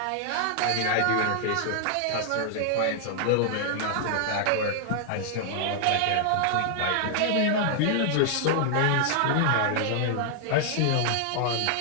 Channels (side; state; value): both; different; correlation 0.00